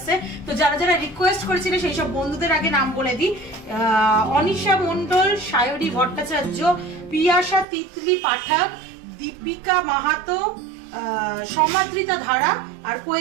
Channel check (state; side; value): drops out; left; at 7.7 s